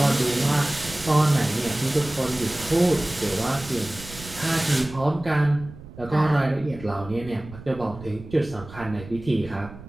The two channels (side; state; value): right; noise; rumble, 16 dB below the sound